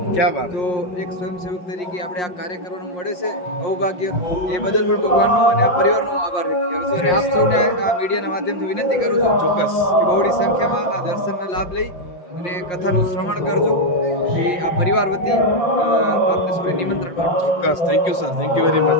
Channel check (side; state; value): right; late; 5.6 ms